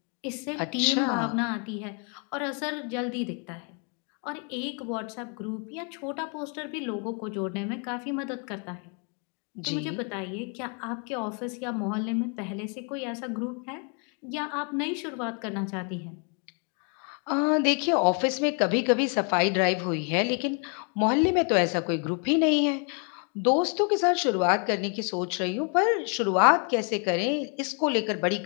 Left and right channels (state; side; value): quieter; right; 38.5 dB